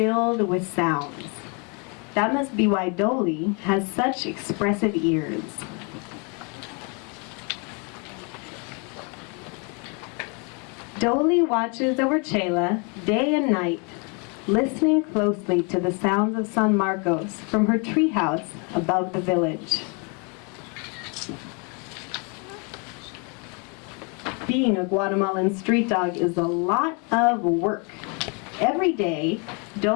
with sounds. That must be why Doley has such expressive ears. Doley watches over Chela day and night, listening closely to the sounds of San Marcos from her treehouse above the village. Being a Guatemalan street dog is a lot of work. Every day,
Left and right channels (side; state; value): right; quieter; 34.4 dB